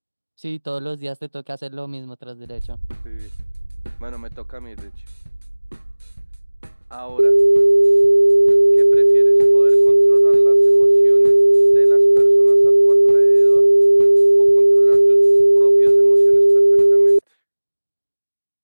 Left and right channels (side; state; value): both; inverted; correlation -1.00